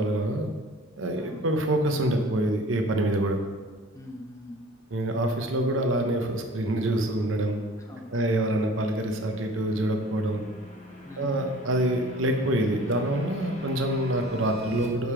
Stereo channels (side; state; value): both; normal; correlation 0.46